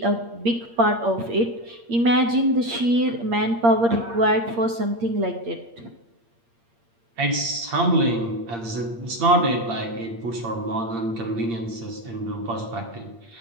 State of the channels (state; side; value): late; left; 8.6 ms